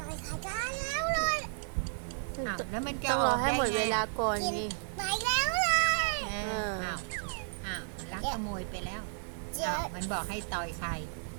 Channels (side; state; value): left; silent; digital silence